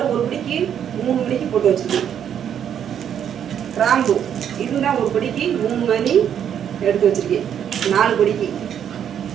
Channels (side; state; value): left; quieter; 9.0 dB